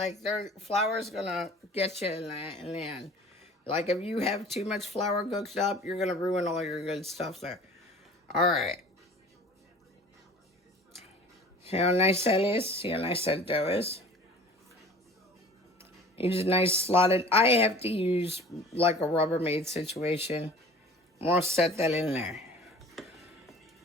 flour's going to get you in the end. Like if you have too much flour cooked up, you're going to ruin all your good stuff there. All right. See how nice that is? See how nice that dough is? Use a nice slotted. I have to use like a Rubbermaid situation. I'm going to set that in there.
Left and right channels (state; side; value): normal; both; correlation 0.45